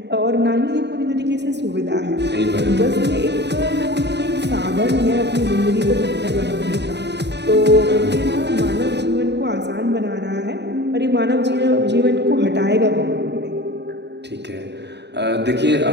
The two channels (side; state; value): left; late; 0.50 ms